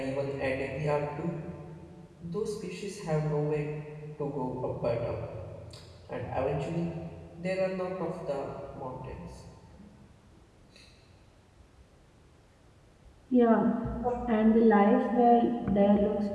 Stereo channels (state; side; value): identical; both; correlation 1.00